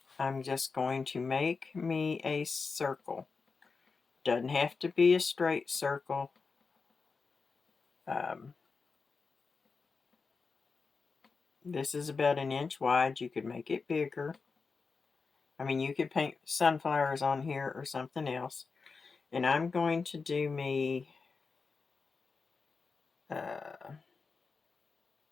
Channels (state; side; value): quieter; right; 4.7 dB